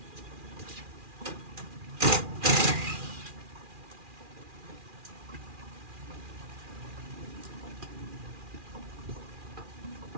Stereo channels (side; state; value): left; late; 2.4 ms